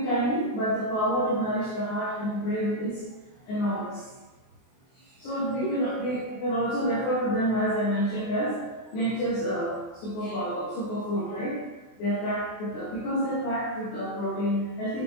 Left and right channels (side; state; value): right; late; 23 ms